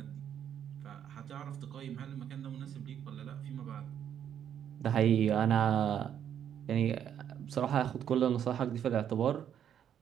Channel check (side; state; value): left; quieter; 9.3 dB